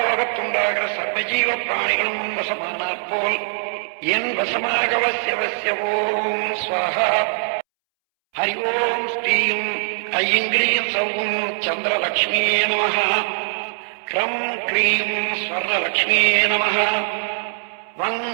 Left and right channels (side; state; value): left; silent; 65 dB below the other